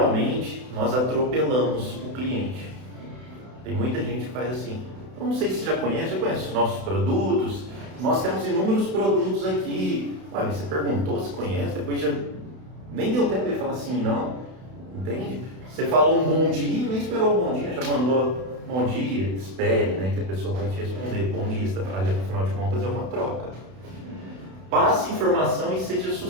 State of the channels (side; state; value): left; late; 32 ms